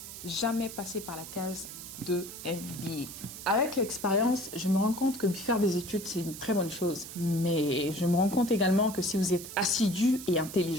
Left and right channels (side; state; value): right; noise; hiss, 12 dB below the sound